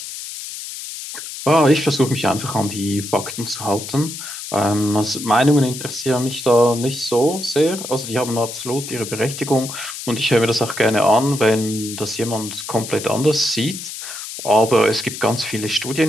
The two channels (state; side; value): noise; left; hiss, 9 dB below the sound